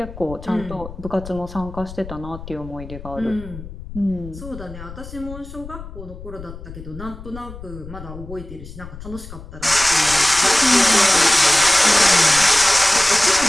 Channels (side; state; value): left; noise; rumble, 14 dB below the sound